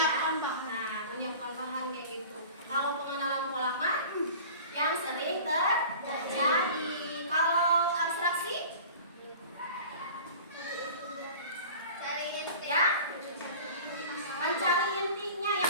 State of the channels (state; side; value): inverted; both; correlation -0.40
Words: Nah, menyiapkan bahan kayak gitu. Kalau pengenalan pola kan yang sering terjadi. Kalau abstraksi, ya, mencari intinya,